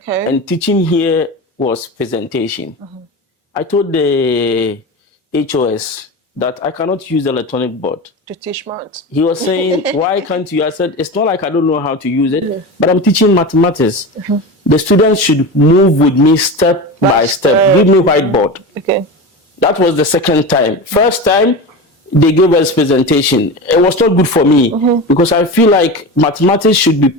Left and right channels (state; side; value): normal; both; correlation 0.26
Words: And teaching here was presentation. I told the HOS that I cannot use the electronic board to teach maths. He was saying, why can't you? I said, it's not like I don't know how to use it, but I'm teaching mathematics. The students should move with me step by step. Give me whiteboard. Okay. That was the second time. First time, they gave us presentation. It was not good for me because I feel like mathematics should be